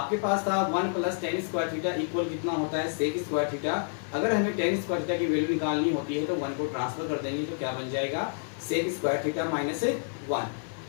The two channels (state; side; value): silent; right; digital silence